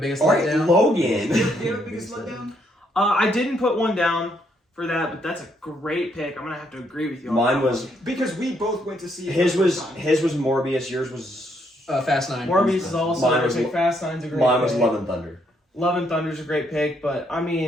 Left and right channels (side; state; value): both; normal; correlation 0.73